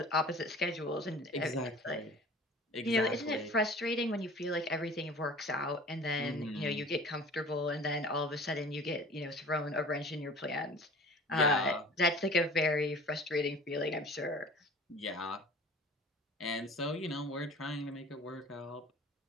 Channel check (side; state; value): both; normal; correlation 0.43